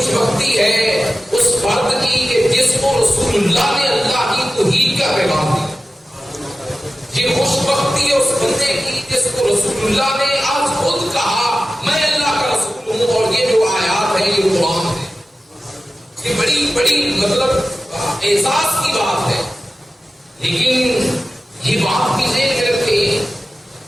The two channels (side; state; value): both; normal; correlation 0.94